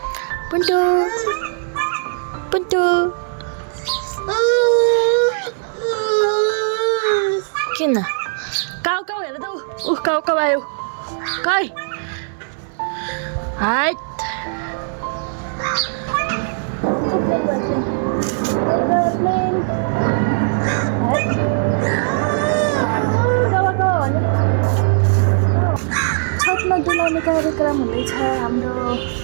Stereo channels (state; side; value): silent; left; digital silence